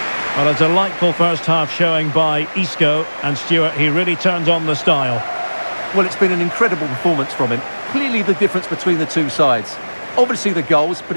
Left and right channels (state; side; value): inverted; both; correlation -1.00